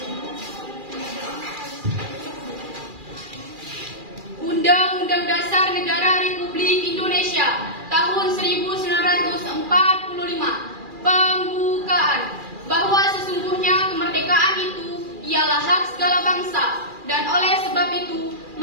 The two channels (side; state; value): left; late; 2.4 ms